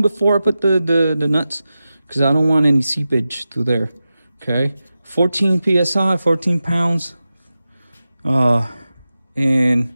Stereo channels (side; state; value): both; inverted; correlation -0.93